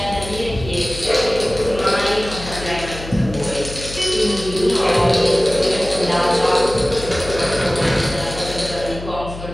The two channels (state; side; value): noise; left; hum, 11 dB below the sound